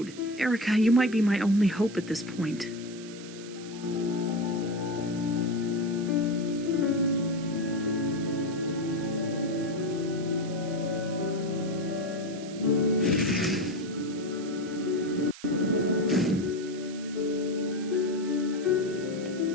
Erica, you might be my only hope at this point.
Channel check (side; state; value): right; noise; hiss, 16 dB below the sound